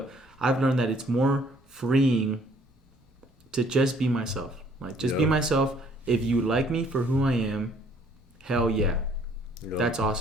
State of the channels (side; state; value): both; normal; correlation 0.60